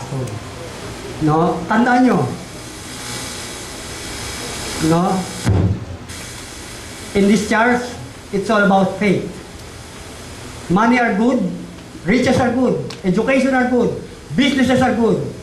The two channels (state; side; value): identical; both; correlation 1.00